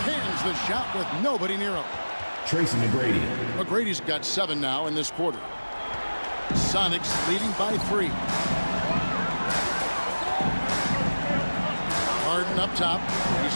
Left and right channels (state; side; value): inverted; both; correlation -1.00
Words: Hands the shot with nobody near him. Tracy McGrady. McGrady's got 7 now in this quarter. Sonics leading by 3. Harden up top.